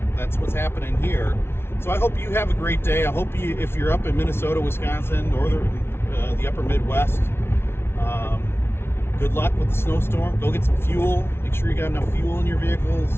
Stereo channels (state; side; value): late; right; 0.12 ms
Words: that's what's happening here. So I hope you have a great day. I hope you, if you're up in Minnesota, Wisconsin, the upper Midwest, good luck with the snowstorm. Go get some fuel. Make sure you got enough fuel in your